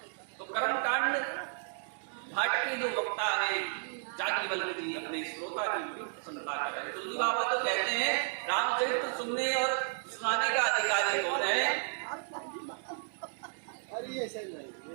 तो कर्म कांड घाट के जो वक्ता है याज्ञवल्क्य जी अपने श्रोता की बड़ी प्रसन्नता कर रहे हैं। तुलसी बाबा तो कहते हैं रामचरित्र सुनने और सुनाने का अधिकारी कौन है?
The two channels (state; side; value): silent; left; digital silence